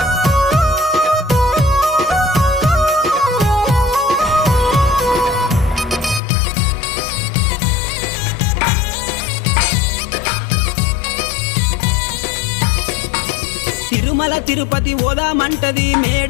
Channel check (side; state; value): right; drops out; at 6.2 s